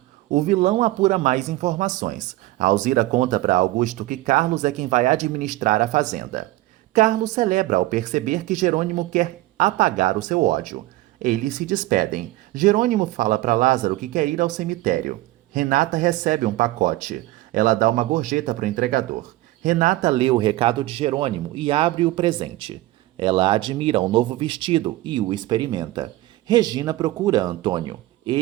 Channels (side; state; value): left; quieter; 17.6 dB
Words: O vilão apura mais informações. Alzira conta para Augusto que Carlos é quem vai administrar a fazenda. Carlos celebra ao perceber que Jerônimo quer apagar o seu ódio. Eles se despedem. Jerônimo fala para Lázaro que quer ir ao cemitério. Renata recebe um pacote. Ela dá uma gorjeta para o entregador. Renata lê o recado de Jerônimo e abre o presente. Ela admira o novo vestido e o experimenta. Regina procura Antônio.